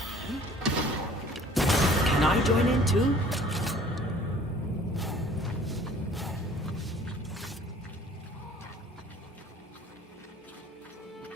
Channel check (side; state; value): both; normal; correlation 0.52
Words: Can I join in too?